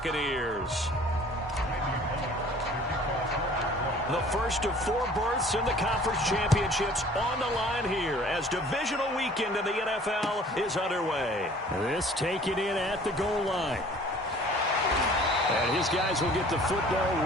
The first of 4 berths in the conference championships on the line here as divisional weekend in the NFL is underway. This taken in at the goal line. And his guys will get the football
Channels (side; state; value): both; normal; correlation 0.51